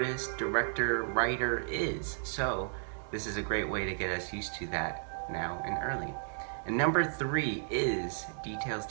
director, writer is. So this is a great way to get us used to that now and early. And number three is details,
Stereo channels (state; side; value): silent; left; 55 dB below the other